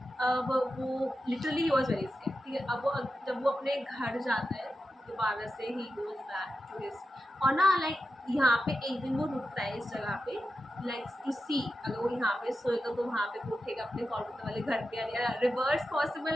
अब वो लिटरली वॉज वेरी स्कैर्ड, ठीक है। अब वो जब वो अपने घर जाता है दोबारा से, he goes back to his, और ना लाइक यहाँ पे एक दिन वो रुकता है इस जगह पे, लाइक टू सी अगर वो यहाँ पे सोएगा तो वहाँ पे वो उठेगा अपने कोलकाता वाले घर पे, या रिवर्स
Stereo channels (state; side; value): normal; both; correlation 0.90